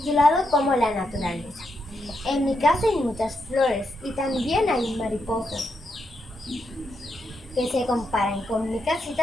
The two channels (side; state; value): both; normal; correlation 0.82